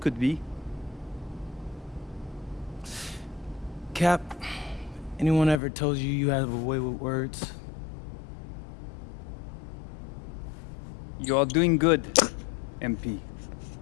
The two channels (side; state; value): right; drops out; at 5.6 s